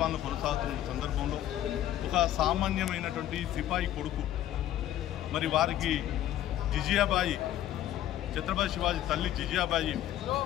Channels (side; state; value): right; quieter; 12.6 dB